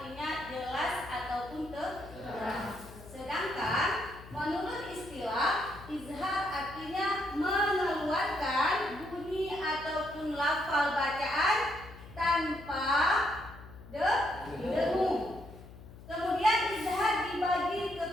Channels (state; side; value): noise; left; hum, 17 dB below the sound